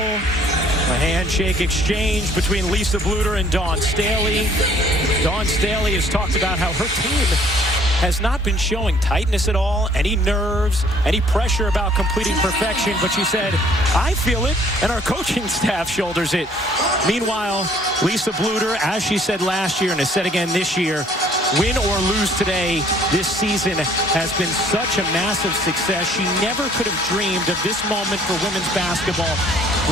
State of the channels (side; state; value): both; normal; correlation 0.59